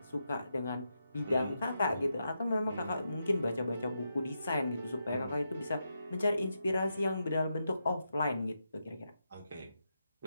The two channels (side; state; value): both; inverted; correlation -0.85